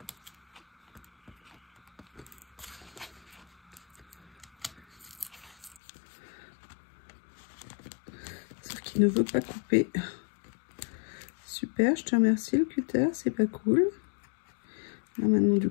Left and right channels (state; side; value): drops out; right; at 5.8 s